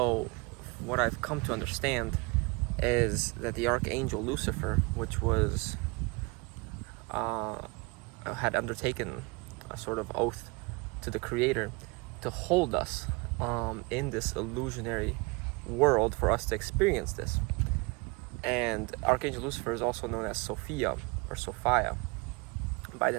what I've come to understand is that the archangel Lucifer, which was had undertaken a sort of oath to the creator to hold us in this illusionary world for us to experience this. And Archangel Lucifer is also known as Sophia or Sophia by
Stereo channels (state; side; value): quieter; left; 27.6 dB